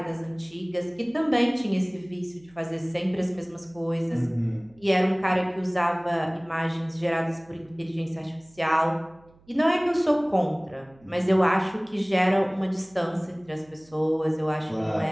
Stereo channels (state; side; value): noise; right; hum, 29 dB below the sound